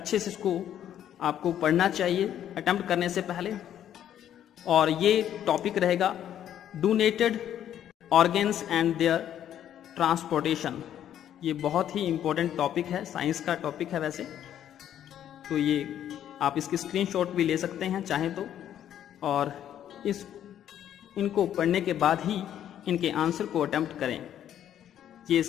से इसको आपको पढ़ना चाहिए अटेम्प्ट करने से पहले। और ये टॉपिक रहेगा donated organs and their transportation. ये बहुत ही इंपॉर्टेंट टॉपिक है, साइंस का टॉपिक है वैसे। तो ये आप इसकी स्क्रीनशॉट भी ले सकते हैं चाहें तो, और इनको पढ़ने के बाद ही इनके आंसर को अटेम्प्ट करें। ये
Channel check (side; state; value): right; quieter; 10.6 dB